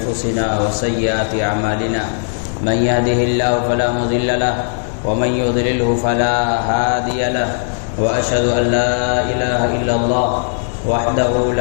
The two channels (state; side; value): silent; right; digital silence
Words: وسيئات أعمالنا من يهده الله فلا مضل له ومن يضلله فلا هادي له وأشهد أن لا إله إلا الله وحده